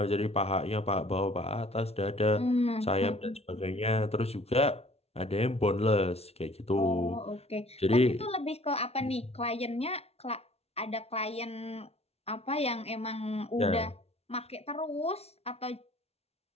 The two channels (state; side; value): late; right; 0.30 ms